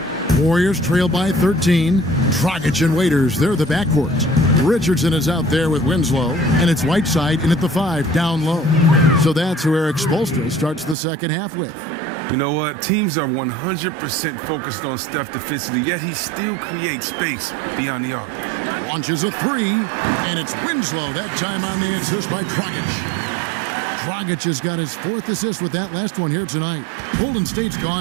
Warriors trail by 13. Dragic and Waiters, they're the backcourts. Richardson is out there with Winslow, and it's Whiteside in at the 5, down low. So that's who Eric Spoelstra starts the second half with. You know what? Teams are 100% focused on Steph defensively, yet he still creates space beyond the arc. Launches a 3, and it's Winslow, that time on the assist by Dragic. Dragic has got his 4th assist with that last one here tonight. Golden State's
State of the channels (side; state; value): left; drops out; at 11.0 s